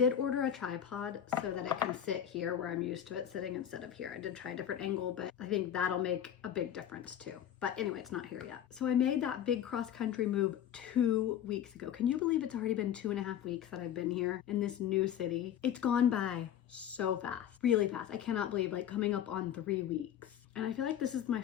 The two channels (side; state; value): right; quieter; 10.0 dB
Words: order a tripod so that it can sit here where I'm used to it sitting instead of here. I did try a different angle, but I think that'll make a big difference too. But anyway, it's not here yet. So I made that big cross-country move 2 weeks ago. Can you believe it's already been 2.5 weeks that I've been here in this new city? It's gone by so fast, really fast. I cannot believe, like, coming up on 3 weeks. And I feel like this is my